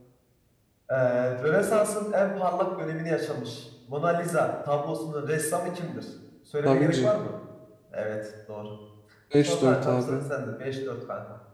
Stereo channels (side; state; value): both; identical; correlation 1.00